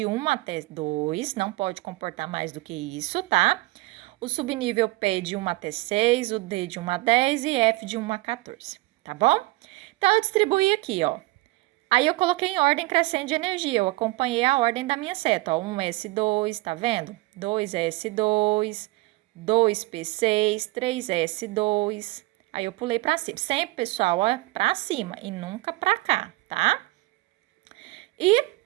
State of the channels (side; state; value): left; quieter; 21.3 dB